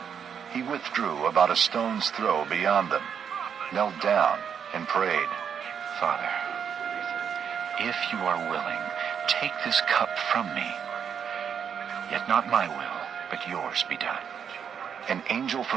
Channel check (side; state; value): left; quieter; 7.6 dB